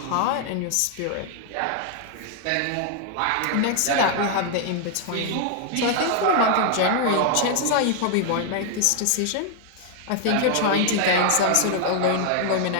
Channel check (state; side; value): different; both; correlation 0.00